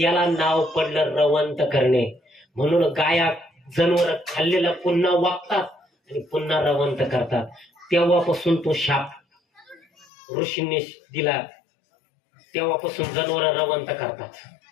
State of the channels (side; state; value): right; drops out; at 10.1 s